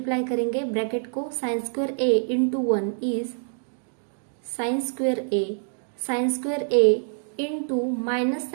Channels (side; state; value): left; silent; digital silence